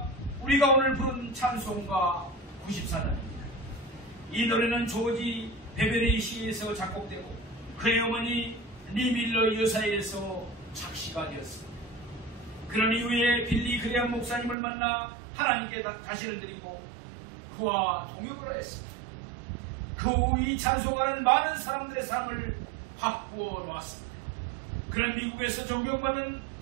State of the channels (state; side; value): drops out; left; at 14.6 s